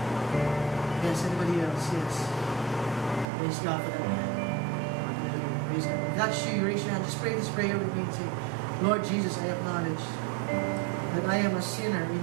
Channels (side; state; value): left; drops out; at 3.2 s